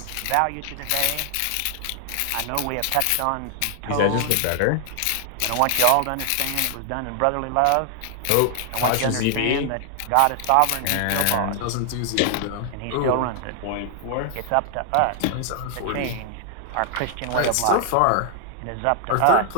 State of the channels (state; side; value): different; both; correlation 0.00